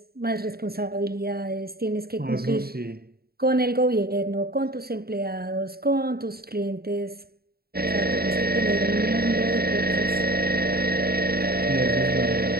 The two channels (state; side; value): late; left; 0.45 ms